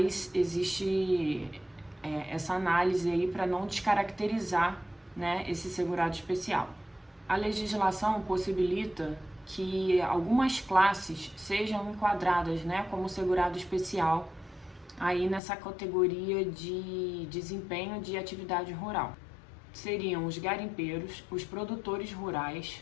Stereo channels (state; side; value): drops out; right; at 15.4 s